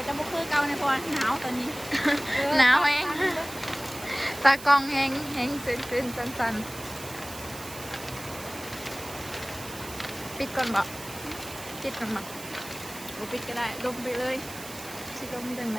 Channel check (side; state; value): right; noise; hiss, 13 dB below the sound